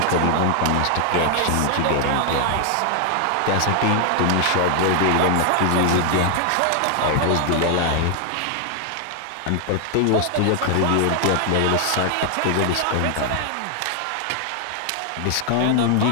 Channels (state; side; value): different; both; correlation 0.00